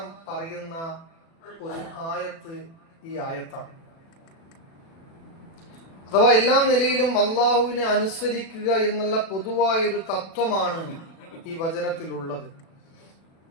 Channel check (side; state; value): right; late; 36 ms